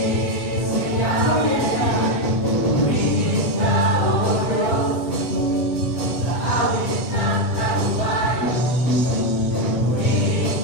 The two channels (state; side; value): late; right; 8.0 ms